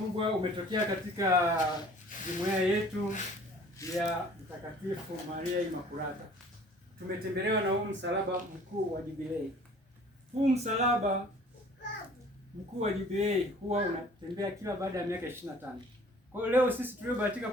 umetokea katika jumuiya yetu ya Mtakatifu Maria Imakulata. Tumetembelewa na huu msalaba mkuu wa jubilei. Huu msalaba mkuu wa jubilei huwa unatembea kila baada ya miaka 25. Kwa hiyo leo sisi tuliobahatika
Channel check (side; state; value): both; normal; correlation 0.51